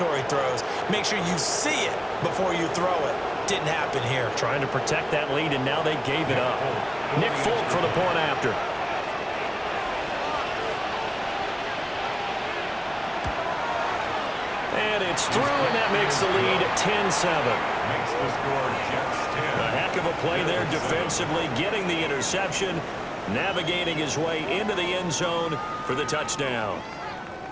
throws. Make sure you see it before you throw it. Didn't happen here. Trying to protect that lead, and now they gave it up. Nick Folk for the point after. through, and that makes the lead 10-7. Makes the score Jets 10. A heck of a play there defensively, getting the interception, navigating his way into the end zone for the touchdown.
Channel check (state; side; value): identical; both; correlation 1.00